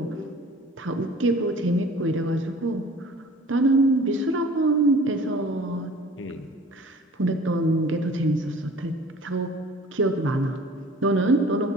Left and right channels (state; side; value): normal; both; correlation 0.47